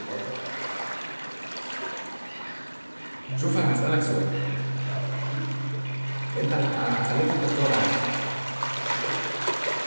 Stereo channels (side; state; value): both; inverted; correlation -1.00